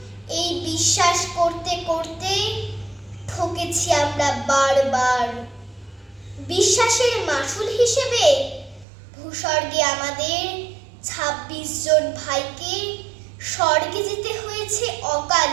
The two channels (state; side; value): drops out; left; at 8.8 s